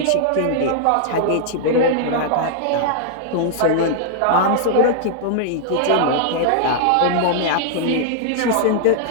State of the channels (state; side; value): different; both; correlation -0.01